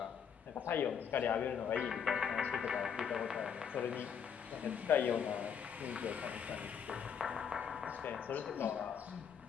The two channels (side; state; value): right; quieter; 7.5 dB